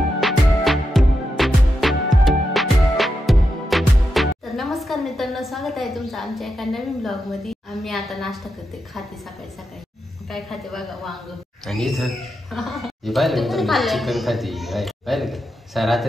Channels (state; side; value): normal; both; correlation 0.86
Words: तर नमस्कार मित्रांनो स्वागत आहे तुमचं आमच्या एका नवीन ब्लॉग मध्ये आम्ही आता नाश्ता करते खाते सकाळी सकाळी काय खाते बघा वांग आणि इथं चिकन खाते पाहिलं का